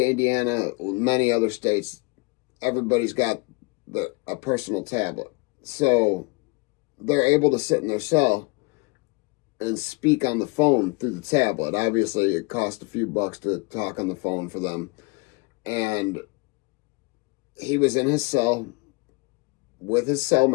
Indiana, many other states, everybody's got a personal tablet. So they're able to sit in their cell and speak on the phone through the tablet. Obviously, it costs a few bucks to talk on the phone for them. And he was in his cell with his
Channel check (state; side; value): quieter; right; 27.7 dB